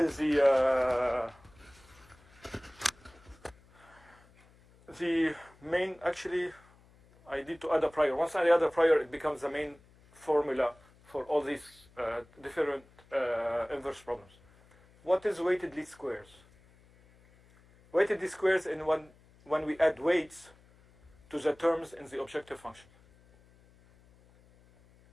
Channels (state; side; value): noise; left; hum, 28 dB below the sound